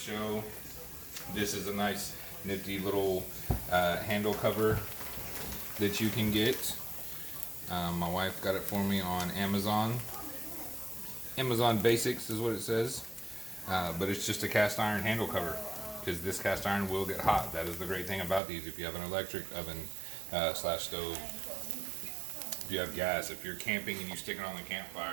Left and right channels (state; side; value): drops out; left; at 18.4 s